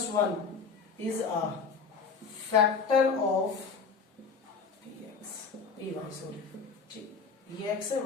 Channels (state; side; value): quieter; right; 5.4 dB